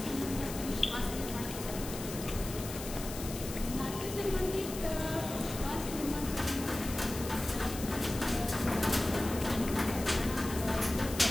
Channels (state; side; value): noise; left; hiss, 10 dB below the sound